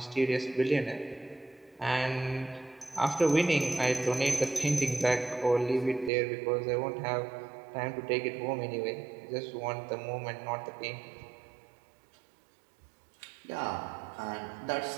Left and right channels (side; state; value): left; drops out; at 6.1 s